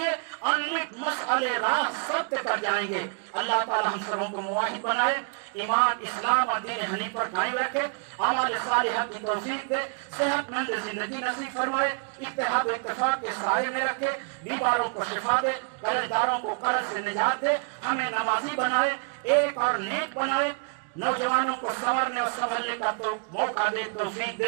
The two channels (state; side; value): quieter; left; 39.2 dB